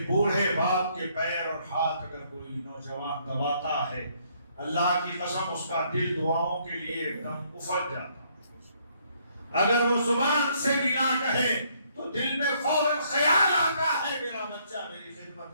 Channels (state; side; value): inverted; both; correlation -0.68